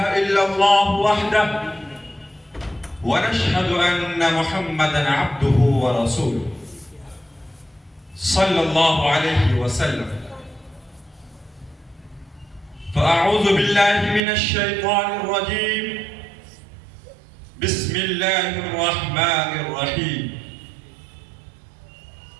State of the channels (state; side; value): drops out; left; at 14.2 s